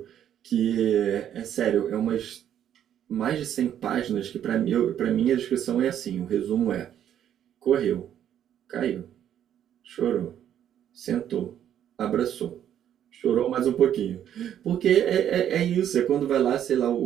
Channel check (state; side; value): quieter; left; 10.2 dB